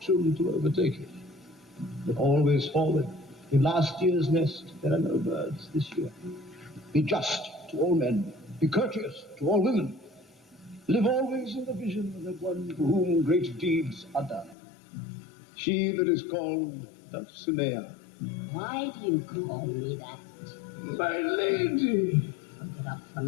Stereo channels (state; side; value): drops out; right; at 14.6 s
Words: to overtake it. But always forward. In last year's nest, there are no birds this year. Be just to all men. Be courteous to all women. live always in the vision of that one for whom great deeds are done. She that is called Dulcinea. Why do you call me that? My lady. I'll get up